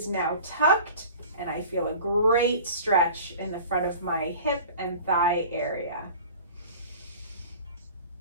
now tucked. And I feel a great stretch in the front of my hip and thigh area.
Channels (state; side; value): inverted; both; correlation -0.42